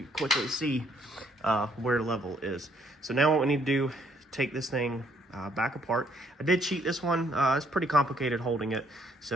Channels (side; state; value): both; normal; correlation 0.68